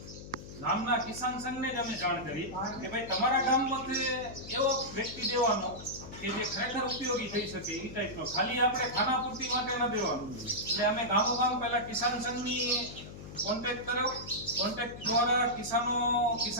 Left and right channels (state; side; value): noise; left; hum, 13 dB below the sound